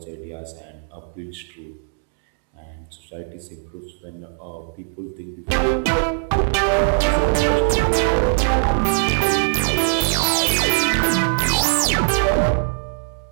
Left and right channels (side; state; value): left; silent; digital silence